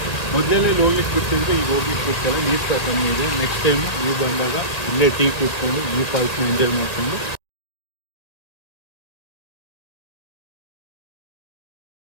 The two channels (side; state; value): right; late; 2.1 ms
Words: ಮೊದಲೇ ಹೋಗ್ಲಿಕ್ಕೆ ಬಿಡ್ತಿದ್ರೆ ಈಗ ಹೋಗ್ಲಿಕ್ಕೆ ಬಿಡ್ತಾರೆ. ನೀರು ಸಹ ಕಮ್ಮಿ ಇದೆ. ನೆಕ್ಸ್ಟ್ ಟೈಮ್ ನೀವು ಬಂದಾಗ ಇಲ್ಲೇ ಟೀ ಕೂತ್ಕೊಂಡು ಈ ಫಾಲ್ಸ್ನ ಎಂಜಾಯ್ ಮಾಡಿಕೊಂಡು